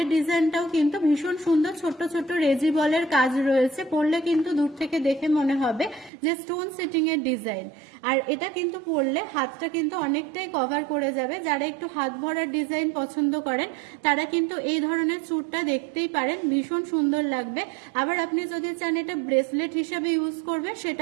ডিজাইনটাও কিন্তু ভীষণ সুন্দর, ছোট ছোট রেজি বলের কাজ রয়েছে। পরলে কিন্তু দূর থেকে দেখে মনে হবে যে স্টোন সেটিং এর ডিজাইন। আর এটা কিন্তু পরলে হাতটা কিন্তু অনেকটাই কভার করে যাবে। যারা একটু হাত ভরার ডিজাইন পছন্দ করেন, তারা কিন্তু এই ধরনের চুড়টা দেখতেই পারেন, ভীষণ সুন্দর লাগবে। আবার আপনি যদি চান এটা ব্রেসলেট হিসাবে ইউজ করবে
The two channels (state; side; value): drops out; left; at 6.1 s